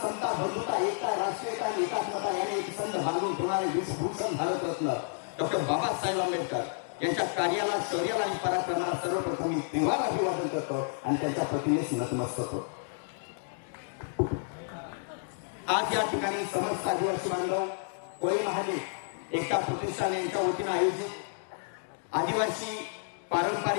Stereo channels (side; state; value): right; silent; digital silence